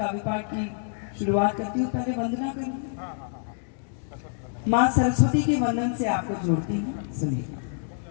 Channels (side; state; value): right; silent; digital silence